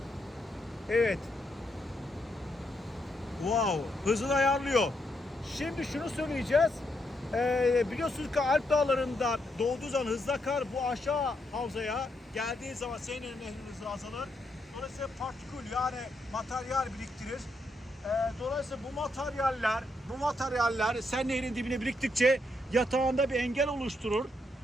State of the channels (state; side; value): normal; both; correlation 0.79